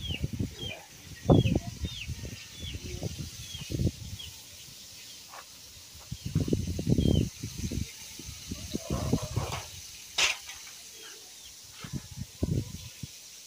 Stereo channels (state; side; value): identical; both; correlation 1.00